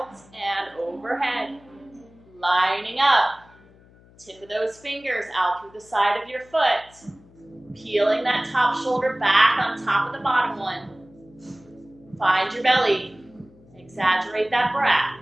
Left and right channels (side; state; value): left; noise; hum, 26 dB below the sound